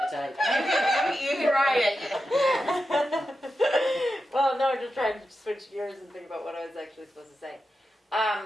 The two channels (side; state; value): both; normal; correlation 0.90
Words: the type. You can write it. Well, no, just trying to switch gears and think about what I was actually supposed to say.